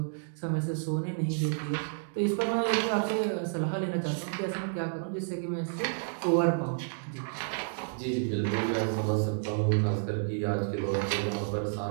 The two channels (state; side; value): silent; left; digital silence